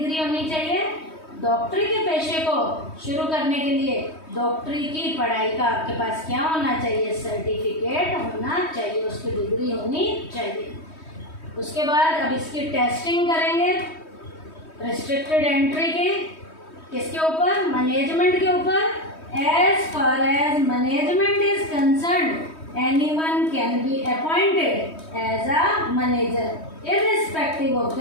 होनी चाहिए। डॉक्टरी के पेशे को शुरू करने के लिए डॉक्टरी की पढ़ाई का आपके पास क्या होना चाहिए, सर्टिफिकेट होना चाहिए, उसकी डिग्री होनी चाहिए। उसके बाद अब इसकी टेस्टिंग करेंगे रिस्ट्रिक्टेड एंट्री की, किसके ऊपर, मैनेजमेंट के ऊपर। As far as management is concerned anyone can be appointed as a manager irrespective of the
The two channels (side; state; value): right; late; 3.2 ms